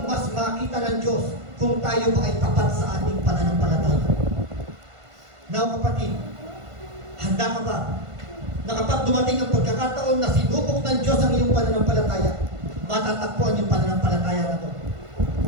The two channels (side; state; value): left; late; 1.5 ms